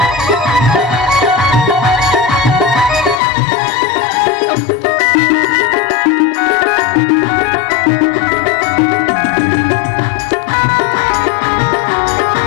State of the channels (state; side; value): drops out; right; at 3.2 s